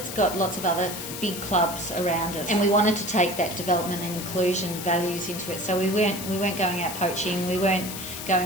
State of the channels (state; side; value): noise; left; hiss, 8 dB below the sound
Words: got lots of other big clubs around us, and we wanted to take that development and inclusion values into it. So we weren't going out poaching. We weren't